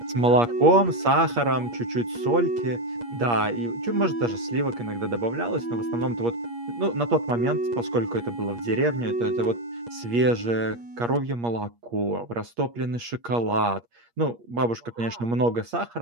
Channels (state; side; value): late; left; 8.5 ms